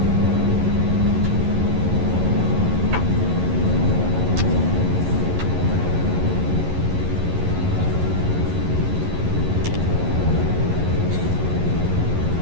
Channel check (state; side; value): late; left; 11 ms